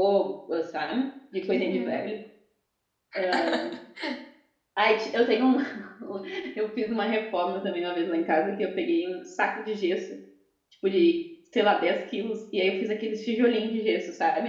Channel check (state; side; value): identical; both; correlation 1.00